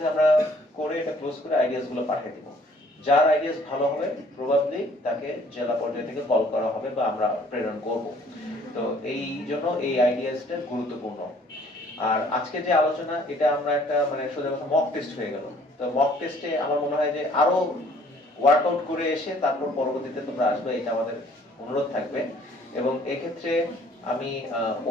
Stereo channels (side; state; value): both; normal; correlation 0.58